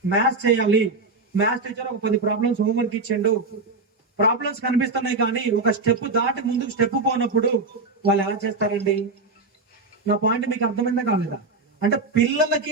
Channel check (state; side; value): quieter; left; 3.6 dB